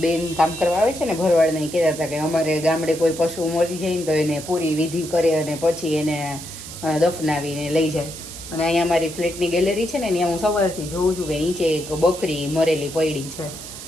બેન કામ કરવા આવે છે ને ભરવાડના, કહેતા હતા કે અમારે ગામડે કોઈ પશુ મરી જાય ને તો એને પૂરી વિધિ કરે અને પછી એને દફનાવીને લઈ જાય. અને અહીંયા અમારી ફ્લેટની ગેલેરી છે ને ત્યાં હું સવારથી જોઉં છું કે નીચે એક બકરી મરેલી પડી છે.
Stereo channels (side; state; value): right; noise; hiss, 12 dB below the sound